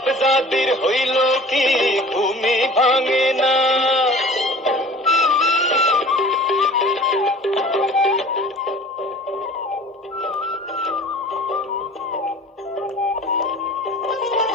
জাদির হইল কি ঘুমি ভাঙে না।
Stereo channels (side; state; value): both; normal; correlation 0.44